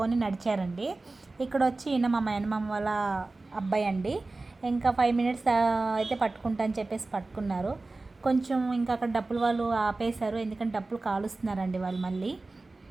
నడిచారండి. ఇక్కడ వచ్చి ఈయన మా మేనమామ వాళ్ళ అబ్బాయి అండి. ఇంకా 5 మినిట్స్ అయితే పట్టుకుంటా అని చెప్పేసి పట్టుకున్నారు. కొంచెం ఇంకా అక్కడ డప్పులు వాళ్ళు ఆపేశారు, ఎందుకంటే డప్పులు కాలుస్తున్నారండి వాళ్ళు మళ్ళీ.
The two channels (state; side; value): quieter; left; 3.3 dB